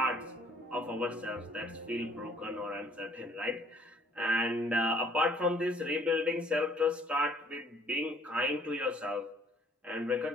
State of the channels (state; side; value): normal; both; correlation 0.60